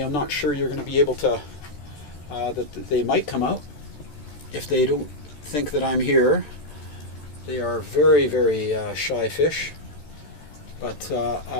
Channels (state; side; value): late; right; 14 ms